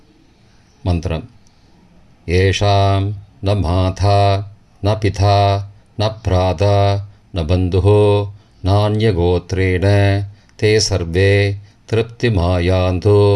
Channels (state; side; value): identical; both; correlation 1.00